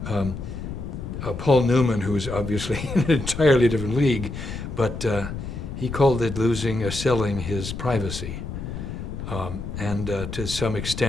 Paul Newman, who's obviously in an entirely different league, but he called it selling his privacy. And to some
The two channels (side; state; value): left; noise; rumble, 7 dB below the sound